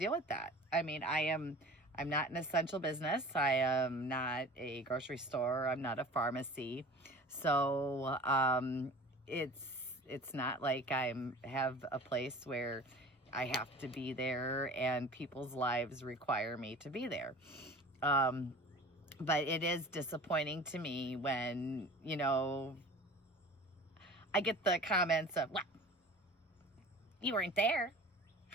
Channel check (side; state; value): both; normal; correlation 0.41